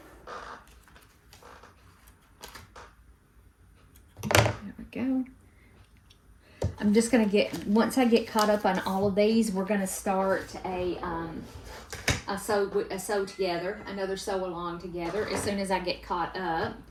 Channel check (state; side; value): identical; both; correlation 1.00